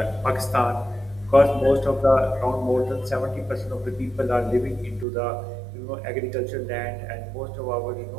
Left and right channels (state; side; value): drops out; left; at 5.1 s